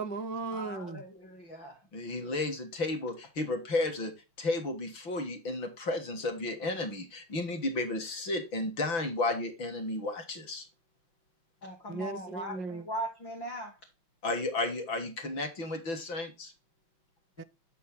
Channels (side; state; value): right; late; 6.0 ms